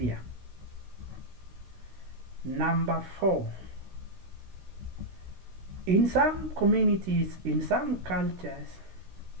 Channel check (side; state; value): left; late; 16 ms